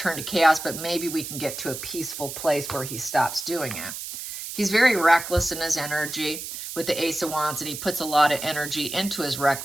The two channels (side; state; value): right; noise; hiss, 8 dB below the sound